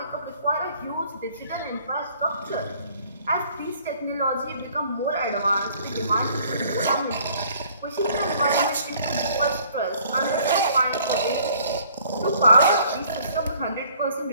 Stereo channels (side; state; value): both; inverted; correlation -0.59